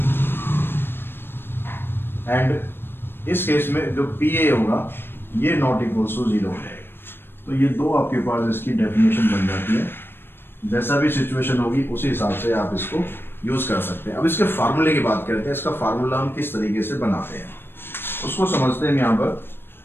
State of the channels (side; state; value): right; late; 0.10 ms